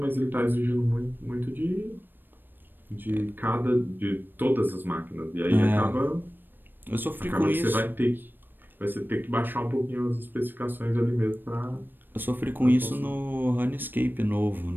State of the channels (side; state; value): left; late; 0.094 ms